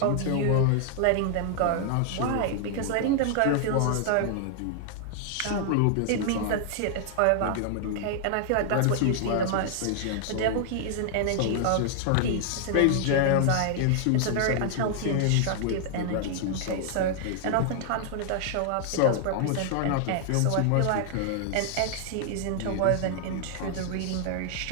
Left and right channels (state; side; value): different; both; correlation 0.00